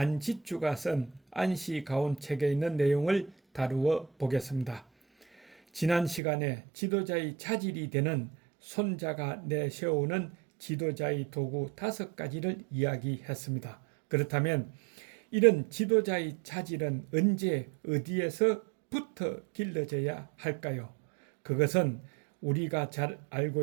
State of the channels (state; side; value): drops out; left; at 6.2 s